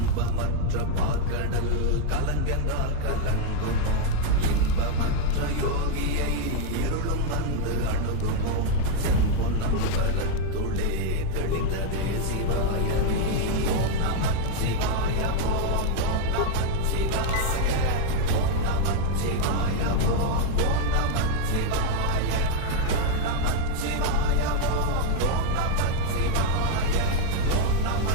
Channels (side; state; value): both; different; correlation 0.00